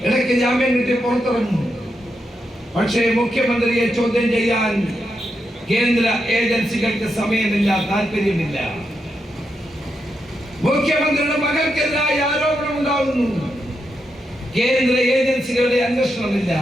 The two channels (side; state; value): both; normal; correlation 0.84